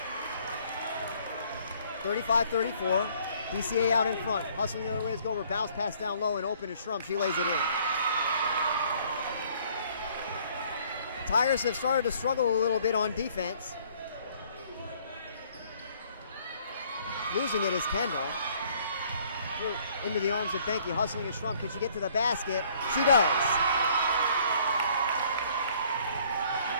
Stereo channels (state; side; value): inverted; both; correlation -0.60